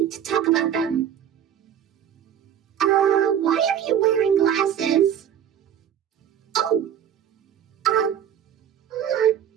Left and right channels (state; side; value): quieter; left; 9.4 dB